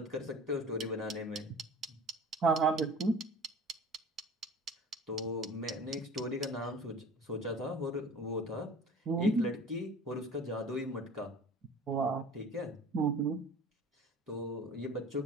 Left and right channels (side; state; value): both; normal; correlation 0.42